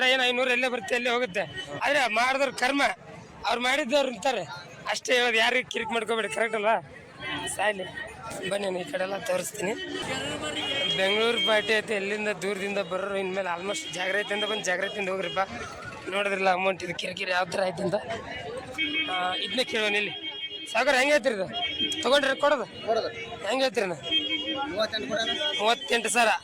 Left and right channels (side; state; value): both; identical; correlation 1.00